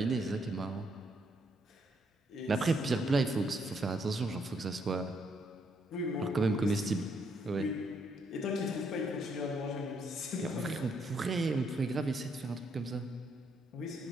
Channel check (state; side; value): normal; both; correlation 0.73